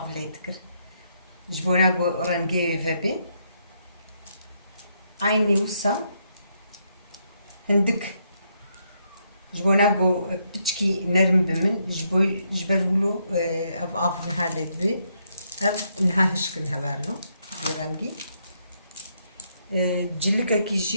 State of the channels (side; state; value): both; inverted; correlation -0.76